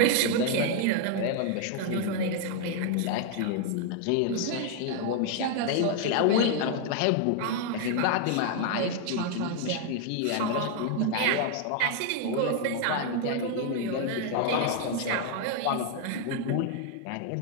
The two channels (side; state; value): both; different; correlation 0.00